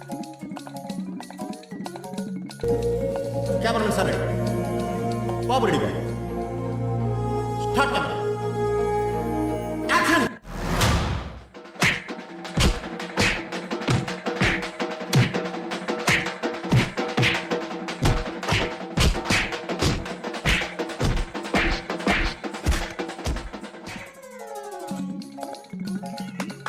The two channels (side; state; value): both; identical; correlation 1.00